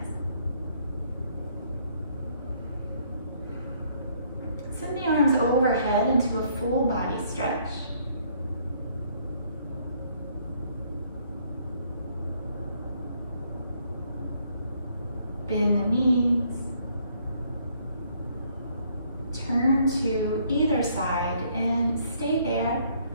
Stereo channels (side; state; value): both; inverted; correlation -0.66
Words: Send the arms overhead into a full body stretch. Bend the knees. Turn to either side and stay there